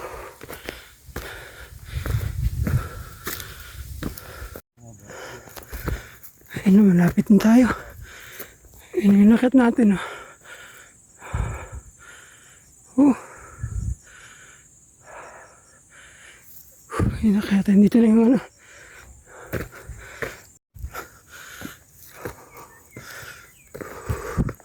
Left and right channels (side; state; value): both; identical; correlation 1.00